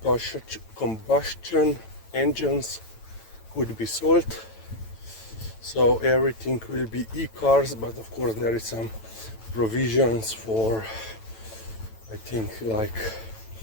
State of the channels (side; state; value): right; late; 9.0 ms